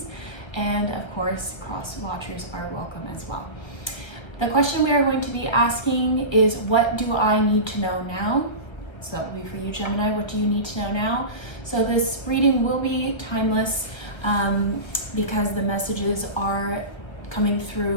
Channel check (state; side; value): late; right; 1.5 ms